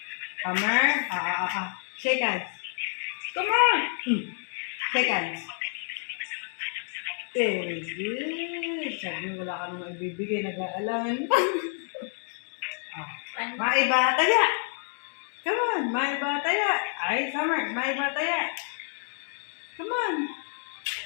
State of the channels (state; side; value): silent; right; 56 dB below the other